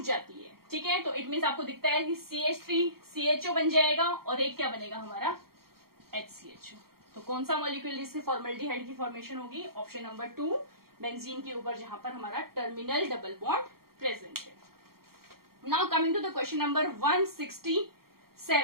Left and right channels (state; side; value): late; left; 0.94 ms